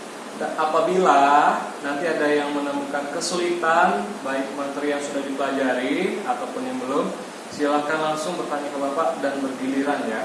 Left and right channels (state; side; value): identical; both; correlation 1.00